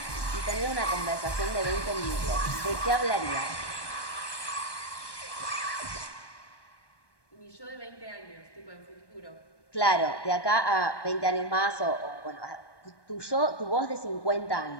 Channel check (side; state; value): right; late; 1.2 ms